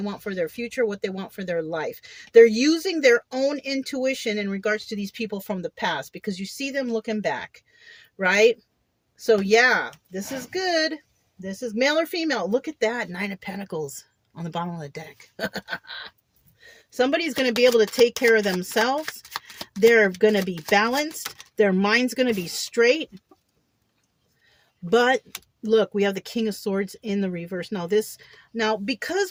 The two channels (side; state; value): both; identical; correlation 1.00